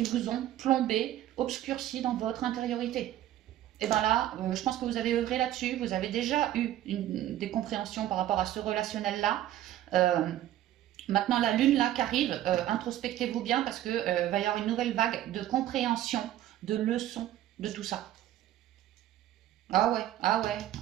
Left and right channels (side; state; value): left; quieter; 13.0 dB